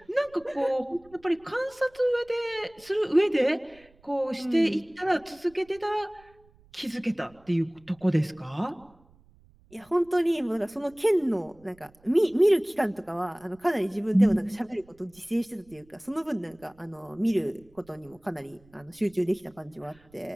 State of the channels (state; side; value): noise; right; rumble, 29 dB below the sound